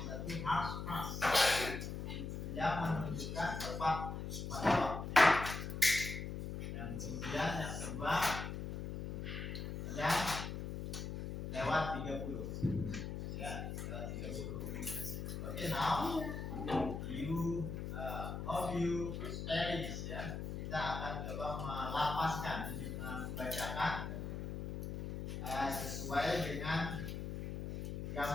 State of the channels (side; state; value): left; noise; hum, 5 dB below the sound